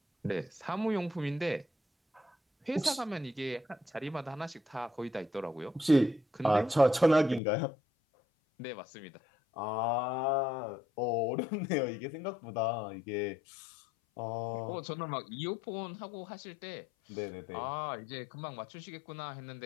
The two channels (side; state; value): right; drops out; at 7.4 s